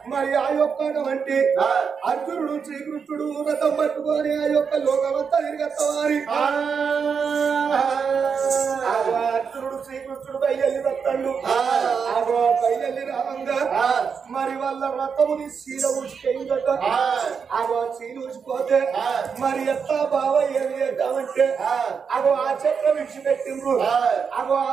మరి ఆ యొక్క వంటి అర్జునుడు శ్రీకృష్ణుడు రథం పట్టుకొని ఆ యొక్క లోకమంతా తిరిగేస్తామని అర్జునుడు శ్రీకృష్ణుడు బయలు వస్తాడు ఆగో బయలు రావంగా మరి వాళ్ళ రథముని శీల ఊసిపోయిందట ఆగో శీల ఊసిపోతే మరి ఎత్తా బావ ఏమి చేద్దామంటే అగో ఆ చక్రం విడిచిపెట్టిండ్రు అగో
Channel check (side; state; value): left; quieter; 6.2 dB